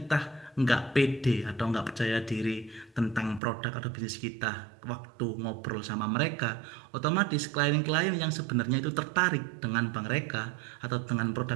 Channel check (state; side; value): drops out; left; at 3.4 s